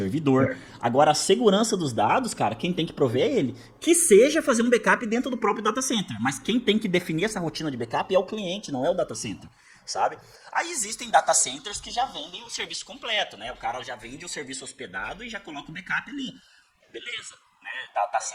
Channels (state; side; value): identical; both; correlation 1.00